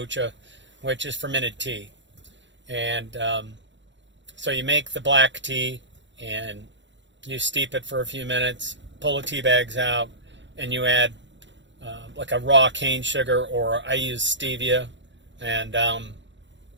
which is fermented tea. And so you make the black tea and you steep it for a few minutes, pull the tea bags out, and you add like a raw cane sugar, or I use stevia, and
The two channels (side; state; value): left; late; 0.53 ms